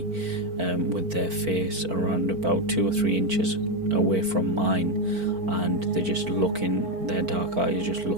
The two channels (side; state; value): left; late; 4.5 ms